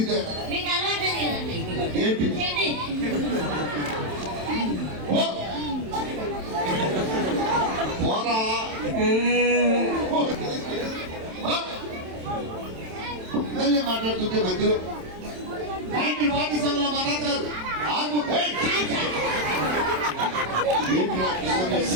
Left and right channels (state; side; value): late; left; 27 ms